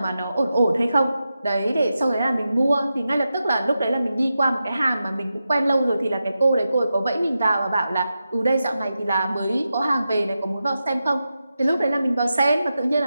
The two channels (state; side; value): inverted; both; correlation -0.90